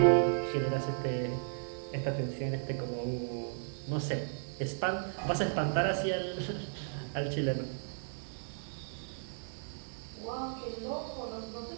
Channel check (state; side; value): silent; left; digital silence